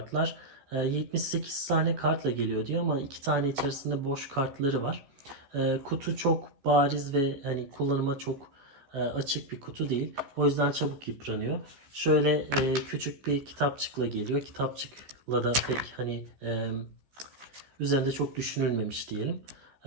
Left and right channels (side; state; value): left; late; 14 ms